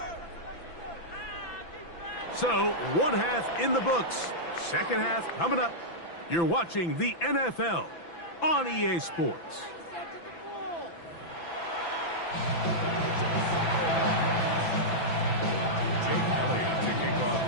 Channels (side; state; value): right; late; 5.9 ms